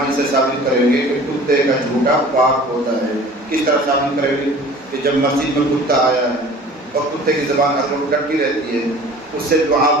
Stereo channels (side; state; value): both; normal; correlation 0.45